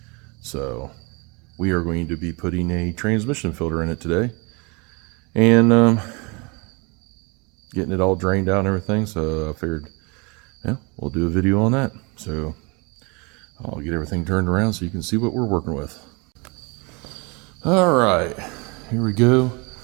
So we are going to be putting a transmission filter in it today and getting it all drained out and everything. So I figured, yeah, we'll do a video on that. So I'll get everything turned around so you can see what we're working with. All right, here we go.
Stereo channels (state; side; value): quieter; left; 29.4 dB